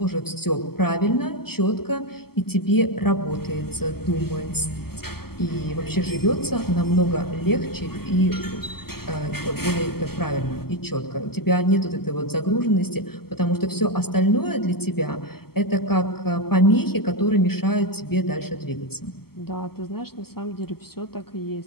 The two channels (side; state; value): right; late; 0.95 ms